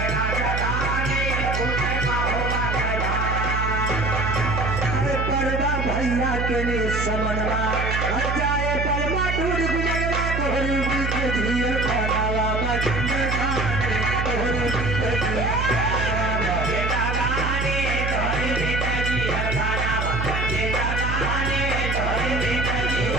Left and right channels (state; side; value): noise; right; hum, 1 dB below the sound